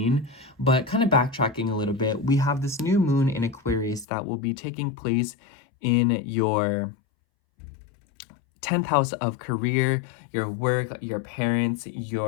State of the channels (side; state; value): right; drops out; at 4.0 s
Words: But kind of backtracking a little bit, we have this new moon in Aquarius that will be taking place in your 10th house of career, your work, your parents,